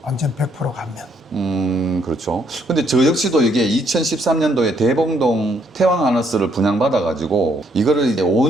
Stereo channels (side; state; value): both; normal; correlation 0.70